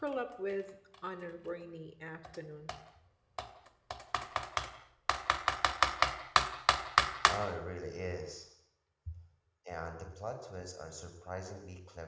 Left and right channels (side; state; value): both; identical; correlation 1.00